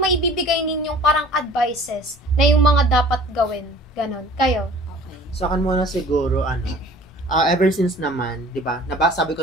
may bibigay ninyong parang advices na yung mga dapat gawin? Ganon. Kayo? Okay. Sa akin muna siguro, ever since naman, 'di ba?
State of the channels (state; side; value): normal; both; correlation 0.48